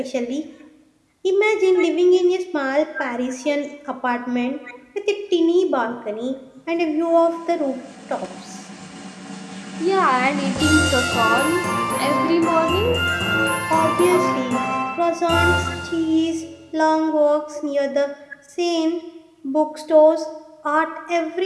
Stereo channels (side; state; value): both; identical; correlation 1.00